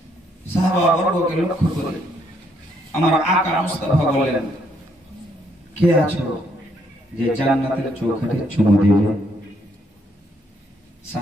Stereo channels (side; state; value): both; normal; correlation 0.71